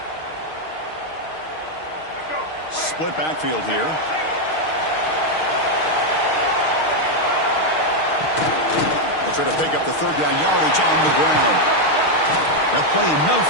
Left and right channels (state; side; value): late; right; 6.4 ms